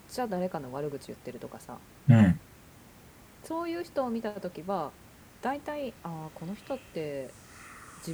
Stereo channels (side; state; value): both; identical; correlation 1.00